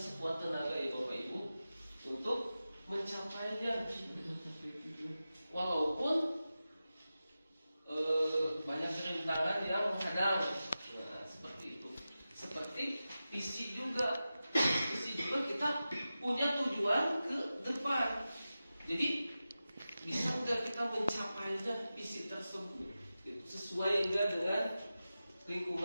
tenaga ya Bapak Ibu untuk mencapainya. Walaupun banyak rintangan yang menghadang. Nah, seperti itu. Seperti visi juga kita punya tujuan ke depan. Jadi bisa nggak kita mencapainya visi tersebut sesuai nggak dengan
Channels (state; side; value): inverted; both; correlation -0.94